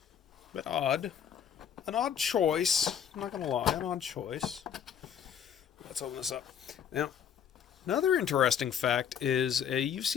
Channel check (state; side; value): quieter; right; 8.4 dB